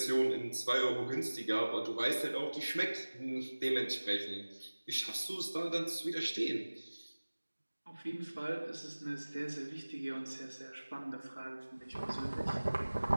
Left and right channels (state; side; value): inverted; both; correlation -1.00